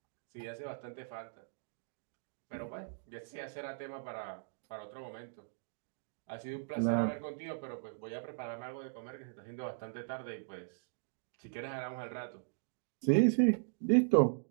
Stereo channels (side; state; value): left; silent; digital silence